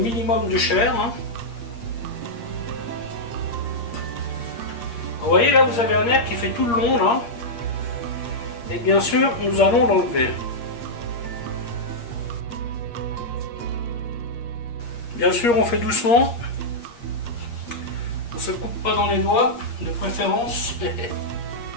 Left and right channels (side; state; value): right; late; 8.5 ms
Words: de chair. Vous voyez là, vous avez un nerf qui fait tout le long là. Et bien sûr, nous allons l'enlever. Bien sûr, on fait doucement. On ne se coupe pas dans les doigts, de préférence.